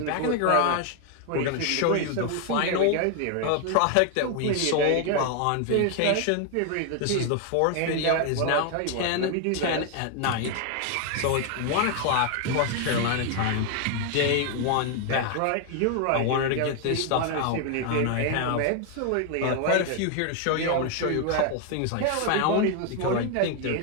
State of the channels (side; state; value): both; different; correlation 0.01